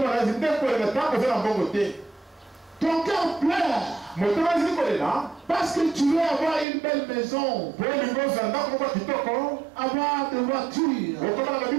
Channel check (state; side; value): drops out; left; at 6.7 s